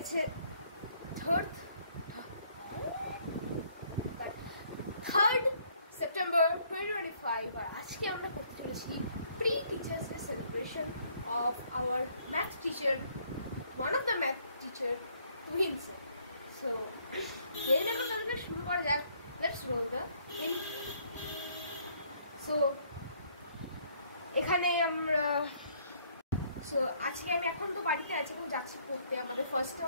3rd September 2025 আর আজকে আমরা করতে চলেছি pre teachers day celebration of our math teacher, one of the math teacher twins. So দেরি না করে তাহলে শুরু করা যাক। Let's role the intro. So এখানে আমরা আজকে আমি এখন তো বাড়িতে আছি, এখন যাচ্ছি পড়তে। আমাদের ফার্স্টে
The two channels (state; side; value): inverted; both; correlation -0.65